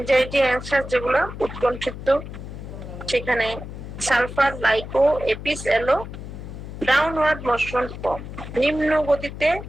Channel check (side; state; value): left; noise; hum, 10 dB below the sound